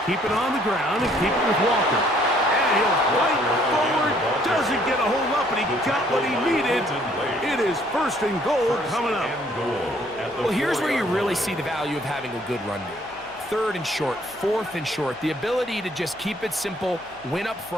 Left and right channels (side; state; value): left; noise; hum, 27 dB below the sound